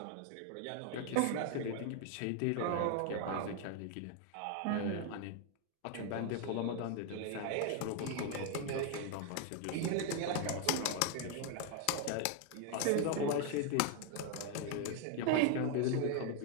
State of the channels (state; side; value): different; both; correlation 0.01